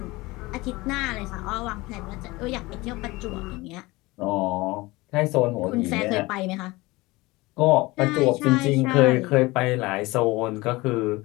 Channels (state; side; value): quieter; right; 21.5 dB